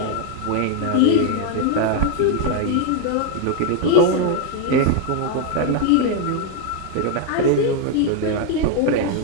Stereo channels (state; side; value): different; both; correlation 0.01